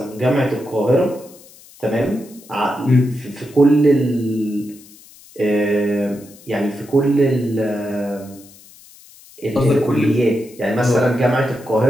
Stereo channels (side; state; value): left; noise; hiss, 23 dB below the sound